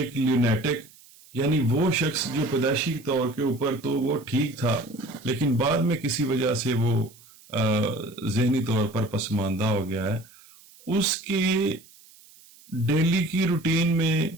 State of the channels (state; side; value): noise; right; hiss, 25 dB below the sound